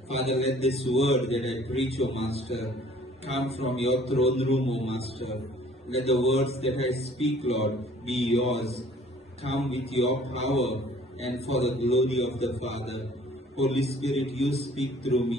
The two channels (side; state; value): both; normal; correlation 0.54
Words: Father, let this word that I preach, O Master, come from your throne room, O Master. Let the words that I speak, Lord, be yours. Come with your power and for the glory of the Father. Holy Spirit, you speak through